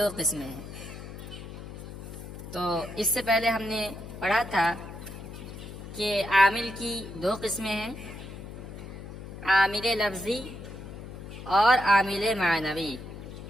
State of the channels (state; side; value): noise; left; hum, 11 dB below the sound